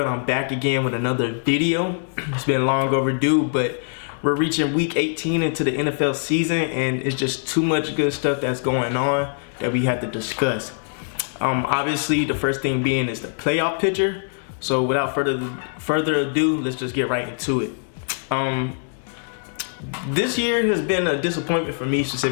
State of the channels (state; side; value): silent; right; digital silence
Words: I'm back again with another video. It's been long overdue, but we're reaching week 18 into the NFL season, and it's just too much good stuff that's going on that we have to discuss. Obviously, the first thing being is the playoff picture. So without further ado, let's just get right into it. This year has been a disappointment for me